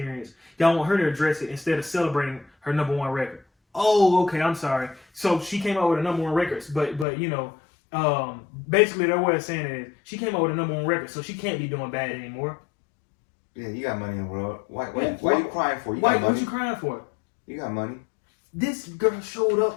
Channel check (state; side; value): drops out; right; at 7.1 s